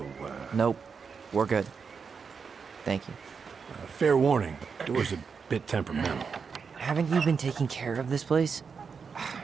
Nope. We're good. Thank you. fair warning, door's a bit temperamental. Haven't you been taking care of this place?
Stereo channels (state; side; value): quieter; left; 5.7 dB